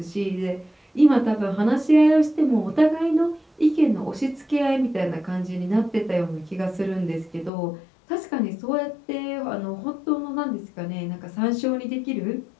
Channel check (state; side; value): drops out; right; at 7.5 s